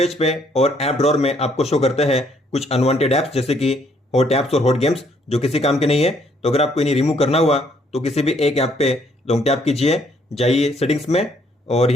पे और ऐप ड्रॉअर में आपको शो करते हैं कुछ अनवांटेड ऐप्स, जैसे कि हॉट ऐप्स और हॉट गेम्स, जो किसी काम के नहीं है। तो अगर आपको इन्हें रिमूव करना हुआ तो किसी भी एक ऐप पे लॉन्ग टैप कीजिए, जाइए सेटिंग्स में और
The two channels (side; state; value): both; normal; correlation 0.67